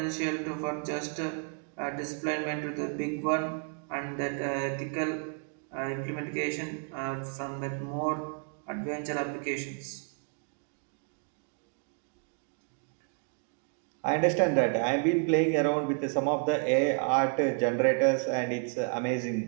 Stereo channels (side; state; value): left; quieter; 39.4 dB